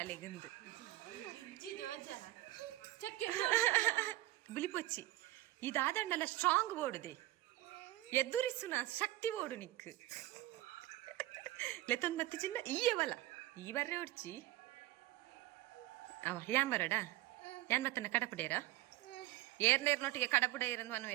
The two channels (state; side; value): quieter; left; 16.8 dB